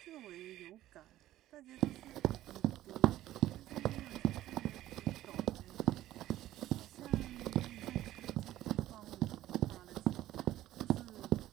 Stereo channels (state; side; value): quieter; left; 14.3 dB